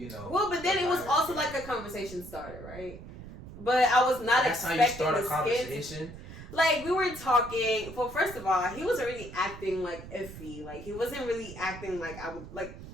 know. Well, but then it was also like a conversation starter, right? But I was not expecting that's how you start a conversation. Like, we were talking. Well, first of all, he wasn't really acting like iffy. Like, he wasn't really acting like I would. Like,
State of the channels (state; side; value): noise; right; rumble, 14 dB below the sound